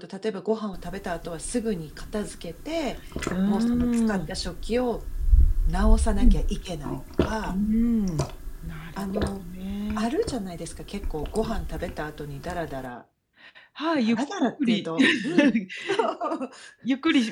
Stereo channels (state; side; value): identical; both; correlation 1.00